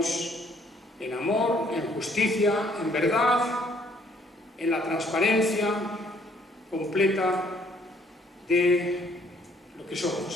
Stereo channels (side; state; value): both; normal; correlation 0.64